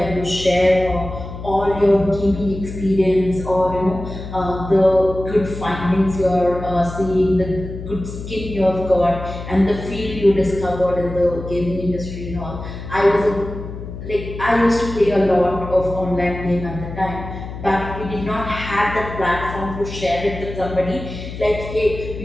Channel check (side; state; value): left; noise; hum, 10 dB below the sound